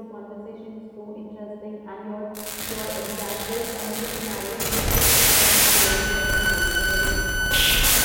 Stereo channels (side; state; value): both; identical; correlation 1.00